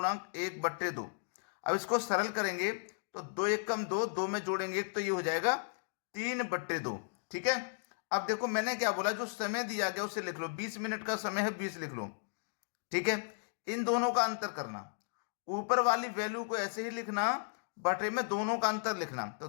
अब इसको सरल करेंगे तो 2 × 1 = 2, 2 में जोड़ेंगे 1 तो ये हो जाएगा 3/2। ठीक है। अब देखो मैंने क्या बोला, जो समय दिया गया उसे लिख लो। 20 मिनट का समय है, 20 लिख लो। ठीक है। इन दोनों का अंतर करना। ऊपर वाली वैल्यू को ऐसे ही लिखना, बटे में दोनों का अंतर लिखना। तो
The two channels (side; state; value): right; silent; digital silence